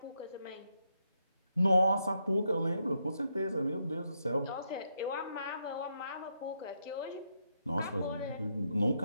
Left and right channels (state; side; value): inverted; both; correlation -0.80